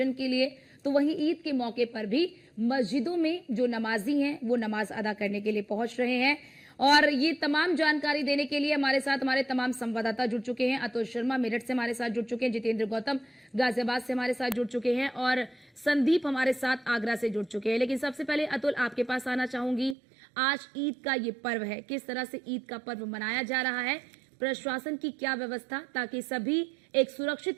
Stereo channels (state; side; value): drops out; left; at 20.0 s